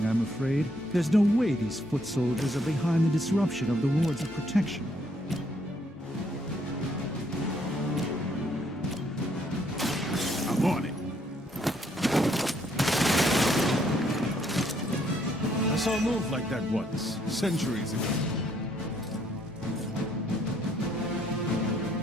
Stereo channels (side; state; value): both; normal; correlation 0.70